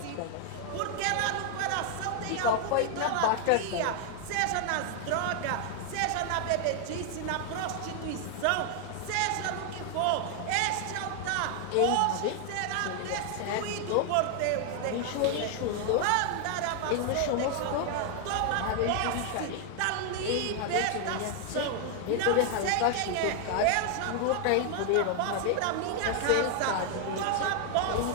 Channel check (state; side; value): different; both; correlation 0.00